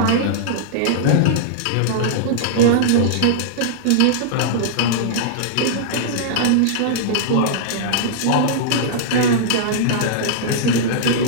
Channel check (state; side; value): different; both; correlation -0.02